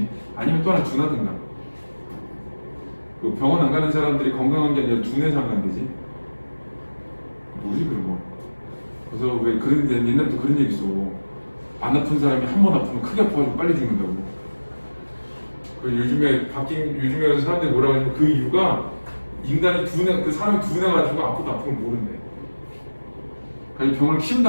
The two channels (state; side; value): inverted; both; correlation -1.00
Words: 아니면 또 하나 둔하든가. 그 병원 안 가는 사람들이 건강한 게 아니라 둔해서 안 간대지. 뭐지 그런 거. 그래서 왜 그런 옛날부터 그런 얘기 있어. 안 아픈 사람이 한 번 아프면 크게 아파가지고 빨리 죽는다고. 그 요즘에 사람들이 뭐라고 하냐면 그 이유가 인간이 그 사람이 둔해가지고 아프도 아프면 모른대. 그래서 병을 키운